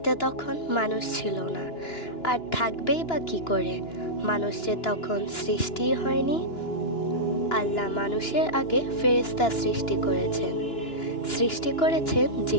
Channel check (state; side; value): late; right; 2.9 ms